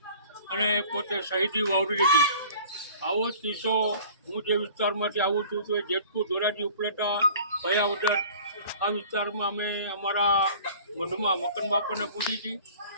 અને પોતે શહીદી વાવરી દીધી. આવો જ કિસ્સો હું જે વિસ્તારમાંથી આવું છું તો જેતપુર ધોરાજી ઉપલેટા ભયાવદર આ વિસ્તારમાં અમે અમારા મઢમાં મકન બાપાને પૂછી હતી.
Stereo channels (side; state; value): both; inverted; correlation -0.47